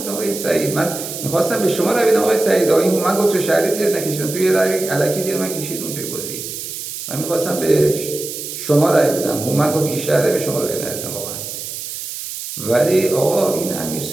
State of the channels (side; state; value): right; noise; hiss, 8 dB below the sound